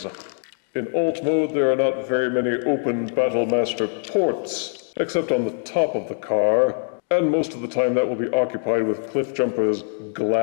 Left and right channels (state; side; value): silent; right; digital silence